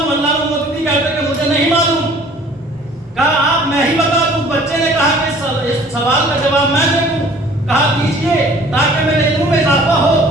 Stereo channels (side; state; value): both; normal; correlation 0.51